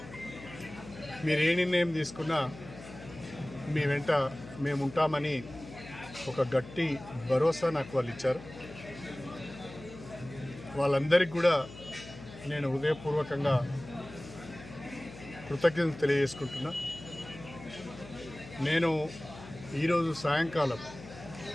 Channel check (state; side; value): noise; left; hum, 15 dB below the sound